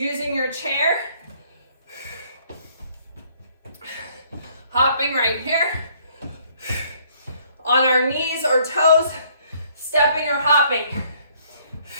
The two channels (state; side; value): inverted; both; correlation -0.64